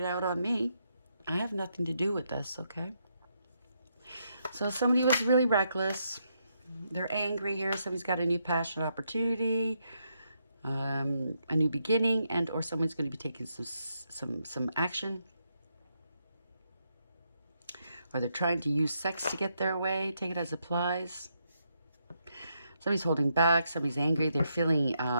out on me. I have nothing to do with this, okay? So somebody was really reckless. They're angry here. Somebody's got a new passion, opportunity, a new beginning, and or someone's going to be taking some action. Or they're trying to use sex to get their way. Take it as applies. Somebody's holding back. Somebody's angry. They're feeling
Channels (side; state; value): both; inverted; correlation -0.79